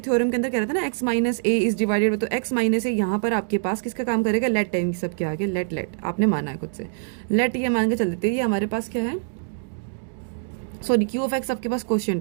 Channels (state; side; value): silent; left; digital silence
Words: थ्योरम के अंदर कह रहा था ना x minus A is divided, तो x माइनस ए यहाँ पर आपके पास किसका काम करेगा? लेट टाइम सबके आगे लेट आपने माना है खुद से। लेट ये मान के चल देते हैं, ये हमारे पास क्या है? सॉरी, q ऑफ x आपके पास